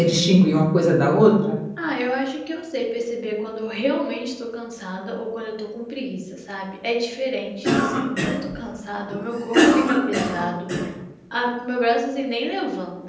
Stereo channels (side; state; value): both; identical; correlation 1.00